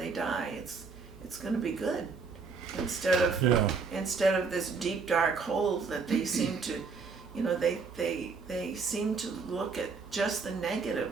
die, it's going to be good, instead of this deep dark hole that they seem to, you know, they seem to look at just the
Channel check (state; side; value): quieter; left; 4.9 dB